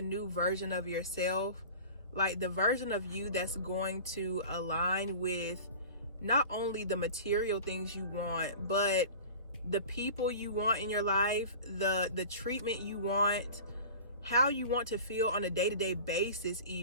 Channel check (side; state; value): both; inverted; correlation -0.38